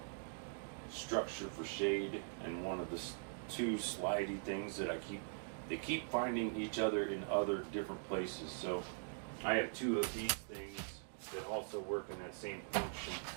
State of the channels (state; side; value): silent; left; digital silence